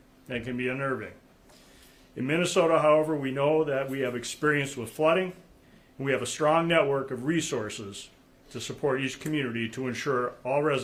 and it can be unnerving. In Minnesota, however, we know that we have experience with flooding, and we have a strong network of resources to support each community to ensure all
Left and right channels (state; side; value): identical; both; correlation 1.00